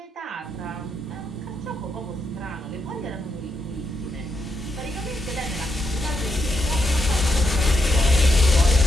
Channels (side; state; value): both; normal; correlation 0.81